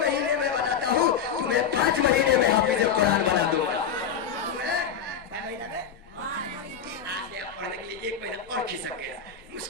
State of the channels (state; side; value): quieter; right; 7.3 dB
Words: में बनाता हूँ, तुम्हें 5 महीने में हाफिज कुरान बना दूंगा। तुम्हें 5 महीने में पढ़ने के लिए 1 महीना और खिसक गया।